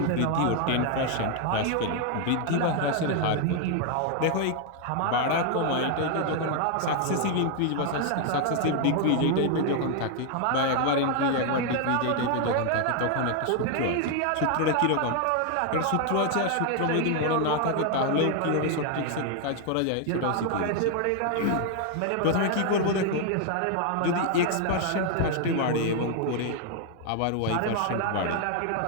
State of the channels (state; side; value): different; both; correlation 0.00